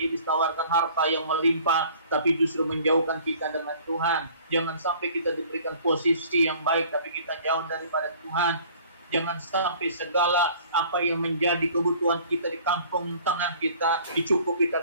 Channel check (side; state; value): both; inverted; correlation -0.51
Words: tawarkan harta yang melimpah, tapi justru menjauhkan kita dengan Tuhan. Jangan sampai kita diberikan posisi yang baik, tapi kita jauh daripada Tuhan. Jangan sampai segala apa yang menjadi kebutuhan kita di kampung tangan kita dicukupi,